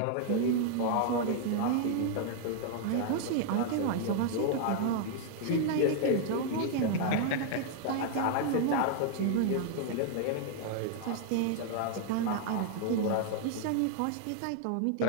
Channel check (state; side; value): different; both; correlation 0.00